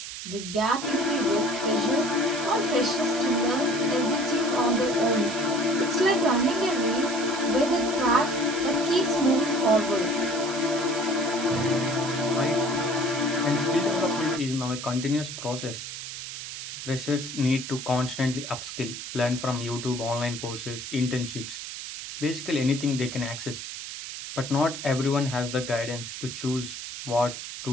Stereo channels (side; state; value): right; noise; hiss, 9 dB below the sound